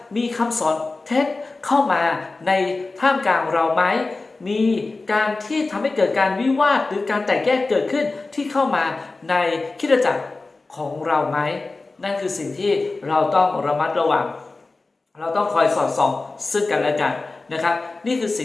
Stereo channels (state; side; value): quieter; right; 3.5 dB